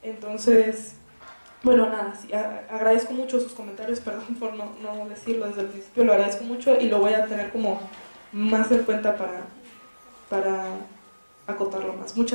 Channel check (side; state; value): both; inverted; correlation -1.00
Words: Entonces, bueno, nada, sí, agradezco mucho sus comentarios, perdón por no decirlo desde el principio, lo agradezco mucho y lo voy a tener como más en cuenta para acotarlo más.